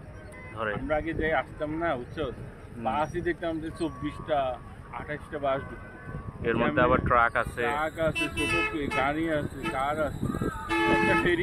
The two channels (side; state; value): both; identical; correlation 1.00